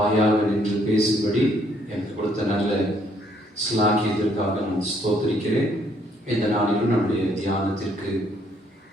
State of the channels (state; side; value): normal; both; correlation 0.67